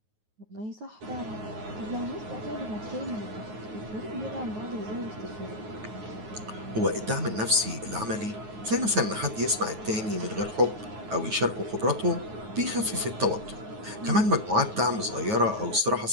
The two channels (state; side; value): late; left; 9.4 ms